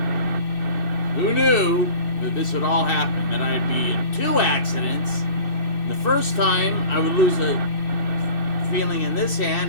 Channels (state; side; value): late; right; 2.6 ms